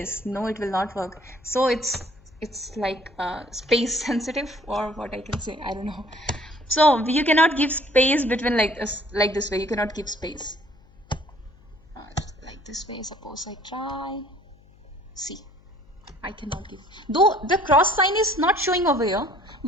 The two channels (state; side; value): noise; left; hum, 27 dB below the sound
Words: No, it will not work. So it's like space sensitive, or what I can say, I don't know. So you cannot give space between like this way. You cannot give space like this way. Suppose I try. See, I cannot give. Though the cross sign is not showing over here,